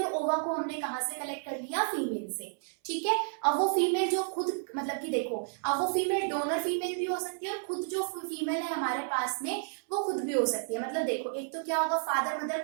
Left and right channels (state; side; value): silent; left; 57 dB below the other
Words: ओवा को हमने कहाँ से कलेक्ट कर लिया, फीमेल से। ठीक है, अब वो फीमेल जो खुद मतलब कि देखो, अब वो फीमेल डोनर फीमेल भी हो सकती है और खुद जो फीमेल है हमारे पास में वो खुद भी हो सकती है। मतलब देखो, एक तो क्या होगा, फादर